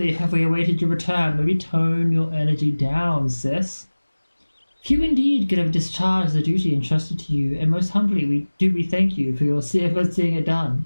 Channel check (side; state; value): both; inverted; correlation -1.00